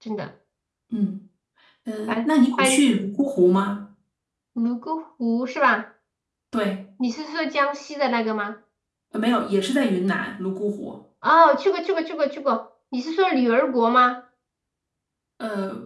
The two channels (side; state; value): both; identical; correlation 1.00